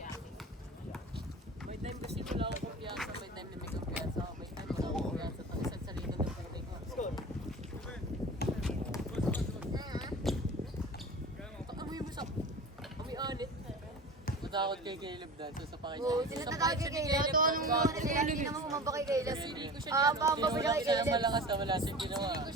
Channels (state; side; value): normal; both; correlation 0.36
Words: May time kasi wala akong kumpiyansa. May time na may kumpiyansa ako. May time wala akong kumpiyansa. Pag isang salita ng puti ko. Amoy mo sa... Amoy anit. Matakot kay Caleb dahil sa pakisya. Oo, sila tatawag kay Kayla. Ito anong mga sila, hindi naman kumamba kay Kayla. Pamba ba siya kay Kaya Kayla? malakas na wala siyang ginawa. Ko